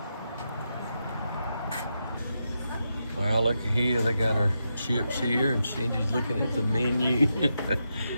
Well, look here, they got our chips here, and Cindy's looking at the menu.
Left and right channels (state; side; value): inverted; both; correlation -0.86